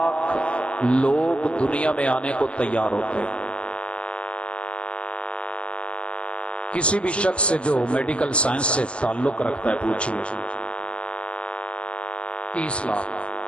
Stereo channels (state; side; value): late; right; 0.055 ms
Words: लोग दुनिया में आने को तैयार होते हैं। किसी भी शख्स से जो मेडिकल साइंस से ताल्लुक रखता है पूछिए, 30 लाख